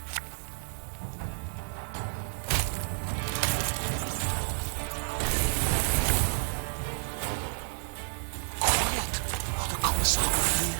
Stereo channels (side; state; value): left; silent; digital silence